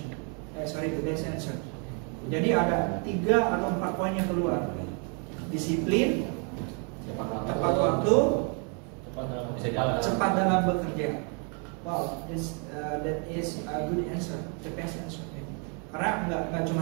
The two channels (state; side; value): quieter; left; 37.6 dB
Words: The best answer. Jadi ada 3 atau 4 poin yang keluar. Disiplin, tepat waktu, cepat dalam bekerja. Wow, that is a good answer, the best answer. Karena nggak cuma